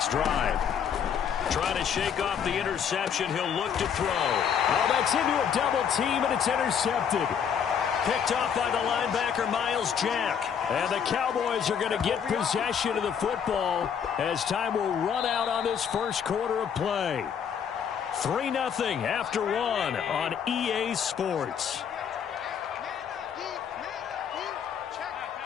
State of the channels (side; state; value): right; quieter; 7.8 dB